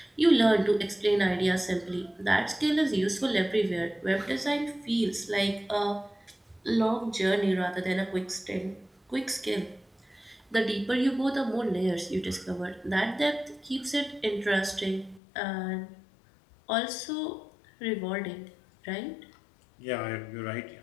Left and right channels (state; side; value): drops out; right; at 15.2 s